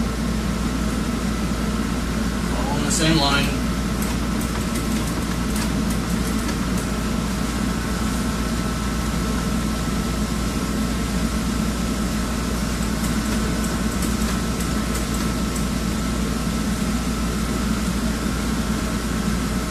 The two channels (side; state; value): both; identical; correlation 1.00